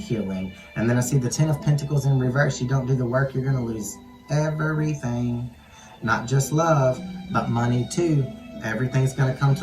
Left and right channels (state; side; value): identical; both; correlation 1.00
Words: And then I see the 10 of Pentacles in reverse. You don't do the work, you're going to lose everything. Not just love, but money too. Everything's going to come